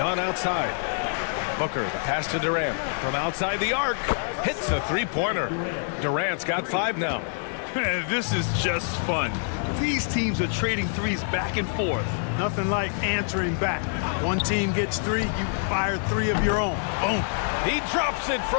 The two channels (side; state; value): right; silent; digital silence